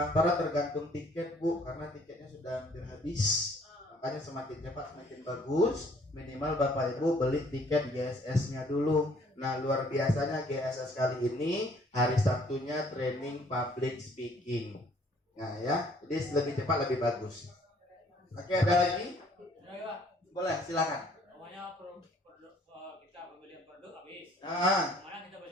tergantung tiket Bu, karena tiketnya sudah hampir habis. Makanya semakin cepat semakin bagus. Minimal Bapak Ibu beli tiket GSS-nya dulu. Nah, luar biasanya GSS kali ini hari Sabtunya training public speaking. Nah ya, jadi lebih cepat lebih bagus. Oke, ada lagi? Boleh, silakan. Namanya kita pembelian produk habis. Mana kita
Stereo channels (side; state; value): both; normal; correlation 0.60